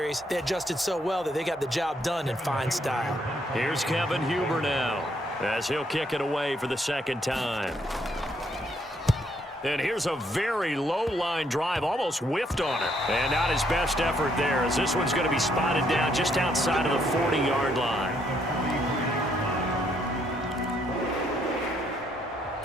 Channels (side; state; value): both; normal; correlation 0.71